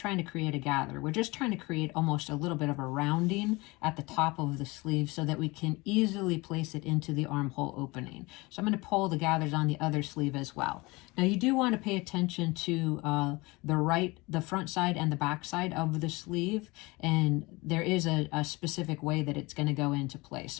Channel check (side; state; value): right; quieter; 23.8 dB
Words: to create a gather. We're just trying to create almost a little bit of a rounding at the top of the sleeve so that we can easily place it into the armhole opening. So I'm going to pull the gathers on the other sleeve as well. Now you do want to pay attention to the front side and the back side of the sleeve, and there is a specific way that it's going to go into place.